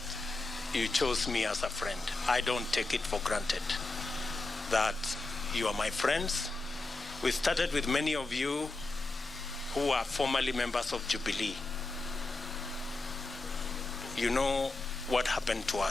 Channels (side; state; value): right; quieter; 3.2 dB